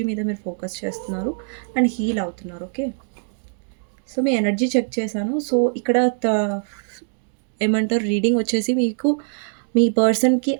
మీద మీరు ఫోకస్ చేస్తున్నారు అండ్ హీల్ అవుతున్నారు. ఓకే. సో మీ ఎనర్జీ చెక్ చేశాను. సో ఇక్కడ ఏమంటారు రీడింగ్ వచ్చేసి మీకు మీ పర్సన్‌కి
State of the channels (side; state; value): left; silent; digital silence